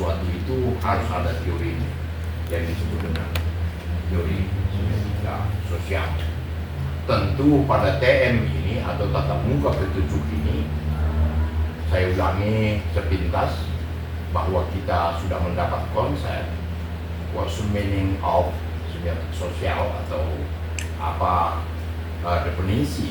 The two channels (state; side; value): identical; both; correlation 1.00